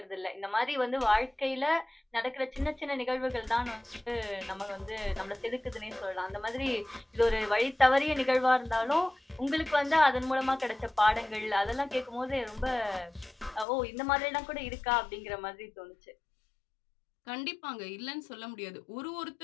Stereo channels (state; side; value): drops out; right; at 13.7 s